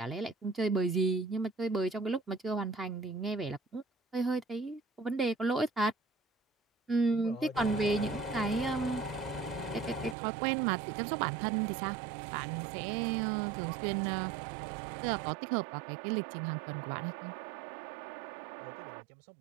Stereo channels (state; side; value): drops out; left; at 10.2 s